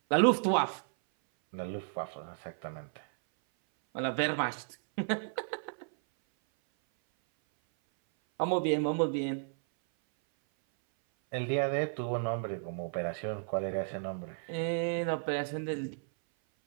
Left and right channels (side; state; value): left; silent; 56 dB below the other